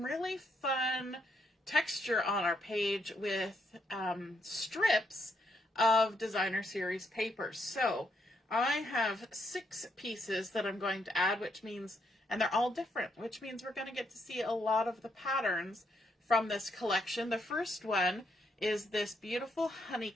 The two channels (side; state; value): both; normal; correlation 0.76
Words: really fun texture on our page with strips of Designer Series paper. So I have 6 pieces that I'm going to add, which means, and they're all different, which means we're going to get to see a lot of the patterns from this collection. The first one is this beautiful